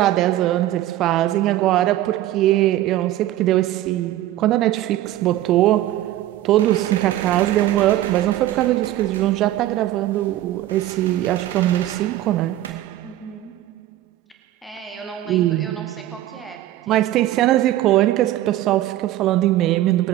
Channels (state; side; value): quieter; left; 14.1 dB